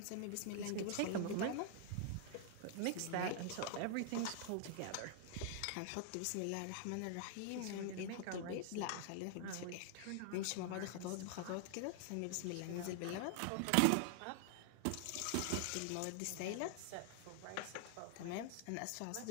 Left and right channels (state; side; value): different; both; correlation 0.00